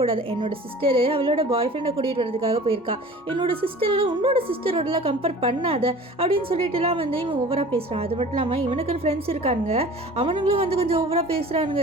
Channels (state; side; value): normal; both; correlation 0.43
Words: என்னோட சிஸ்டரு அவளோட பாய் ஃப்ரெண்டை கூட்டிகிட்டு வரதுக்காக போயிருக்கா, என்னோட சிஸ்டரை உன்னோட சிஸ்டரோடலாம் கம்பேர் பண்ணாத அப்படின்னு சொல்லிட்டுலாம் வந்து இவன் ஓவராக பேசுகிறான். அது மட்டும் இல்லாமல் இவனுக்கு ஃப்ரெண்ட்ஸ் இருக்கானுங்க, அவனுங்களும் வந்து கொஞ்சம் ஓவராக